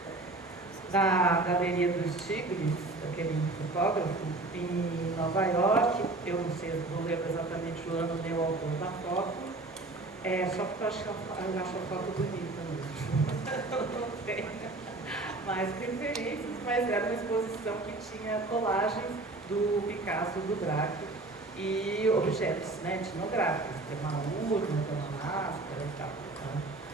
da Galeria dos Tigres, daquele fotógrafo, em Nova York. Eu não sei, não lembro exatamente o ano nem o autor da foto, só porque eu acho a foto bonita mesmo. Não tem mais referências, mas era uma exposição que tinha colagens do Picasso e do Braque, e objetos, né, etnográficos, tem uma urna, tem uma máscara e tal. Né?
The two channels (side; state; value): left; quieter; 3.1 dB